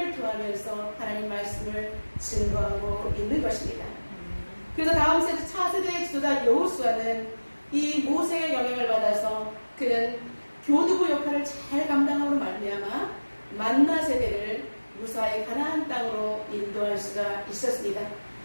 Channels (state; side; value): inverted; both; correlation -1.00